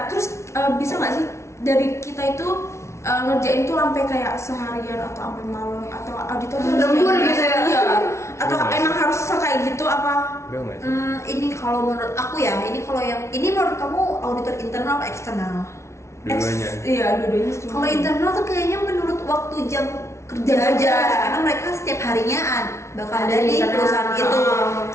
terus bisa nggak sih dari kita itu ngerjain tuh sampai kayak seharian atau sampai malam, atau auditor tuh harus Lembur kayak gitu ya? Iya. Atau Iya, emang harus kayak gitu apa? Enggak nggak sih? Ini kalau menurut aku ya, ini menurut kamu auditor internal atau eksternal? Dua-duanya. Iya, dua-duanya. Kalau internal tuh kayaknya menurut waktu jam kerja Jam aja, kerja. karena mereka setiap harinya bakal Ada ada di di internal. perusahaan itu.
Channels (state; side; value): late; right; 0.13 ms